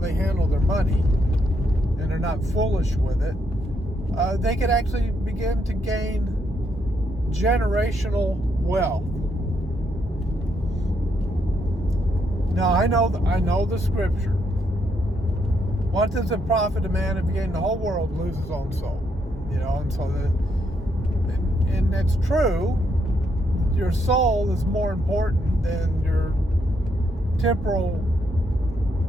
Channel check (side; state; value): both; normal; correlation 0.76